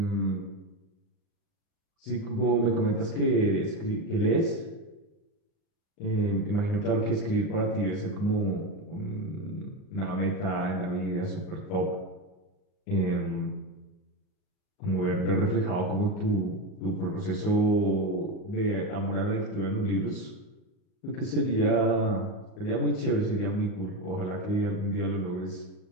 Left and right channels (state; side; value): late; right; 38 ms